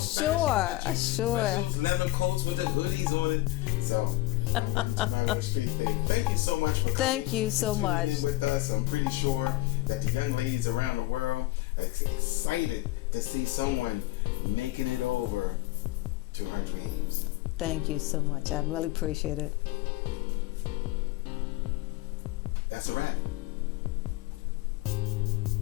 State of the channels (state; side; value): quieter; right; 19.2 dB